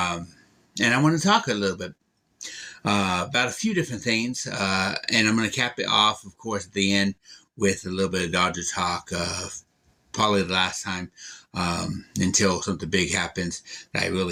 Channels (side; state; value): both; identical; correlation 1.00